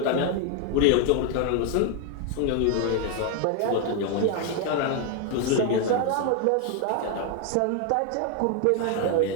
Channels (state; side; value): different; both; correlation 0.00